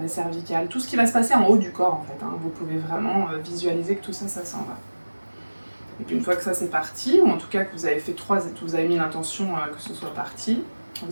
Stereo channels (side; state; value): both; inverted; correlation -1.00